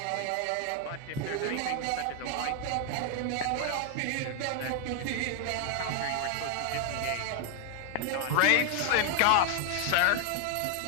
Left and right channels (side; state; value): both; different; correlation 0.00